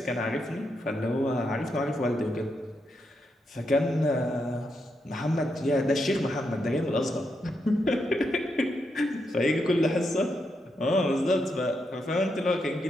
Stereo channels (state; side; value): normal; both; correlation 0.82